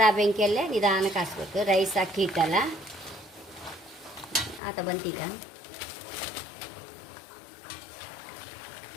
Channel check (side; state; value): right; drops out; at 4.6 s